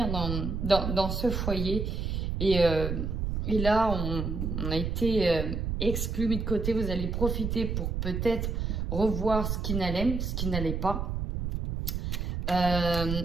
dans ce foyer. Et là, on a été exclu, mis de côté. Vous allez profiter pour peut-être revoir ce qui n'allait pas.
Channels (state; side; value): noise; right; rumble, 2 dB below the sound